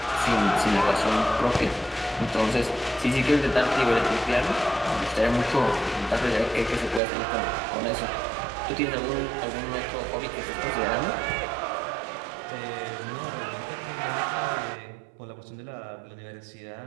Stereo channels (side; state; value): left; drops out; at 7.0 s